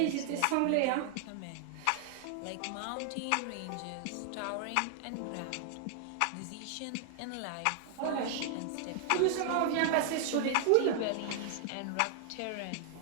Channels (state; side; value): different; both; correlation 0.00